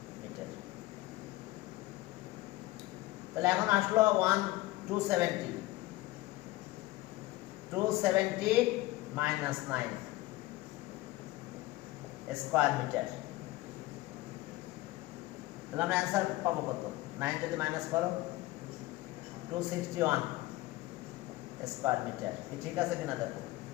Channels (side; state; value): right; quieter; 18.5 dB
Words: মিটার। তাহলে এখন আসলো 270 মাইনাস 9 স্কয়ার মিটার। তাহলে আমরা অ্যান্সার পাবো কত? 9 যদি মাইনাস করো 261 স্কয়ার মিটার। কি ঠিক আছে কিনা দেখো।